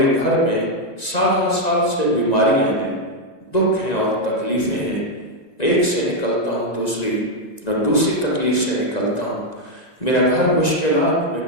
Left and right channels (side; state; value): right; late; 1.9 ms